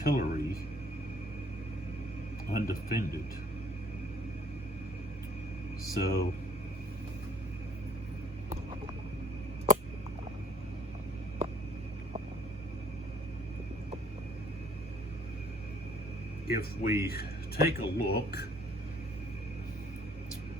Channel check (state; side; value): normal; both; correlation 0.59